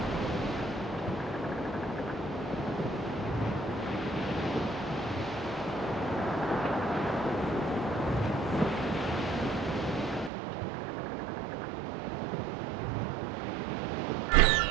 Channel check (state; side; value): drops out; left; at 10.3 s